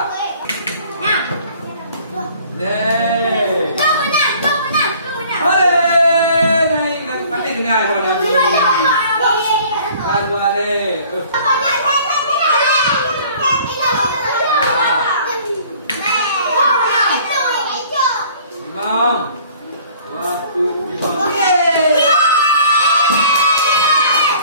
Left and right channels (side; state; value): both; inverted; correlation -0.52